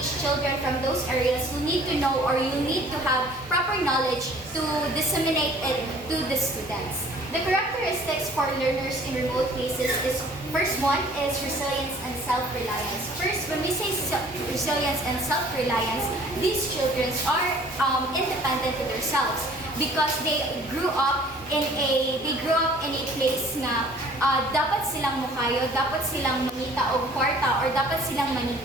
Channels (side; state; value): both; normal; correlation 0.52